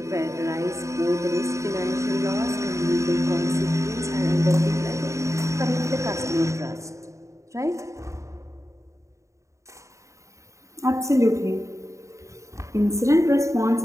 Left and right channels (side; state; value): left; late; 0.15 ms